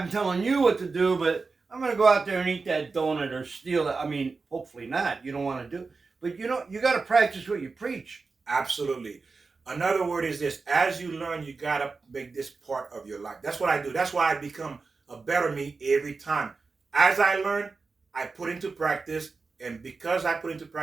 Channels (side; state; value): left; quieter; 4.3 dB